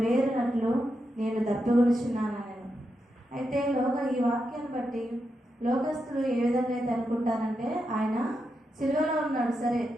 నేను దప్పిగొనుచున్నానని. అయితే ఈ వాక్యాన్ని బట్టి లోకస్తులు ఏ విధంగా అయితే అనుకుంటారంటే, ఆయన సిలువలో ఉన్నాడు, సరే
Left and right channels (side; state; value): both; normal; correlation 0.86